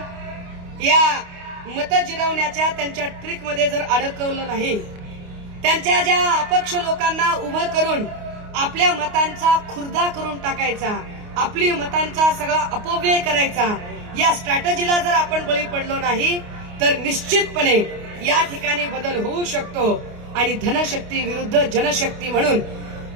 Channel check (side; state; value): left; late; 29 ms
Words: या मत जिरवण्याच्या त्यांच्या ट्रिकमध्ये जर अडकवलं नाही, त्यांच्या ज्या अपक्ष लोकांना उभं करून आपल्या मतांचा खुर्दा करून टाकायचा, आपली मतांचा सगळा अपव्यय करायचा, या स्ट्रॅटेजीला जर आपण बळी पडलो नाही तर निश्चितपणे या ठिकाणी बदल होऊ शकतो आणि धनशक्ती विरुद्ध जनशक्ती म्हणून